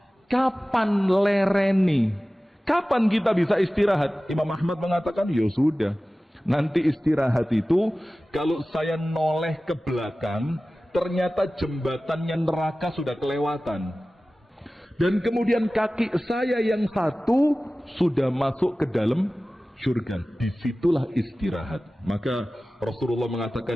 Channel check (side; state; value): both; normal; correlation 0.97